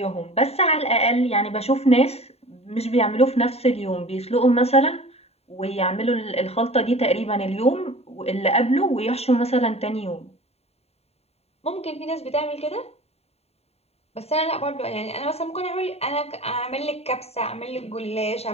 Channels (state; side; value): late; right; 0.30 ms